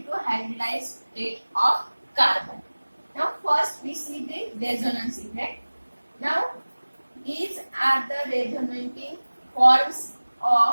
hybridized state of carbon. Now first we see the resonance effect. Now these are the resonating forms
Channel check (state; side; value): inverted; both; correlation -1.00